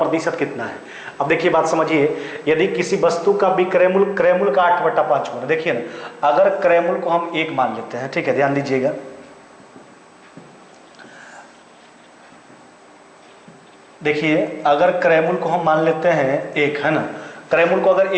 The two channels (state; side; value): identical; both; correlation 1.00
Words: कितना है। अब देखिए बात समझिए, यदि किसी वस्तु का विक्रयमूल्य क्रयमूल्य का 8/5 गुना, देखिए ना, अगर क्रयमूल्य को हम 1 मान लेते हैं, ठीक है, ध्यान दीजिएगा। देखिए अगर क्रयमूल्य को हम मान लेते हैं 1, है ना, क्रयमूल्य को अगर